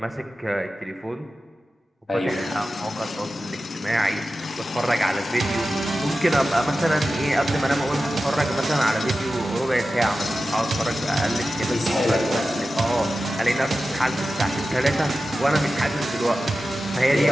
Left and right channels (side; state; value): both; normal; correlation 0.94